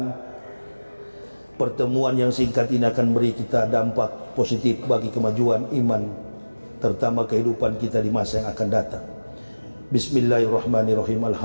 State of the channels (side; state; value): both; inverted; correlation -1.00